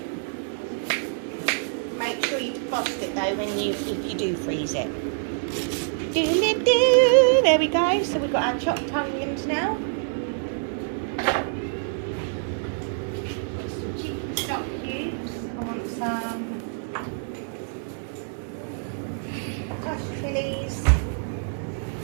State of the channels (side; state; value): left; silent; digital silence